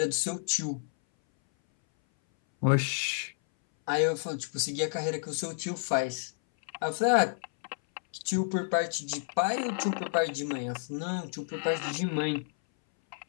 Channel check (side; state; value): right; silent; 58 dB below the other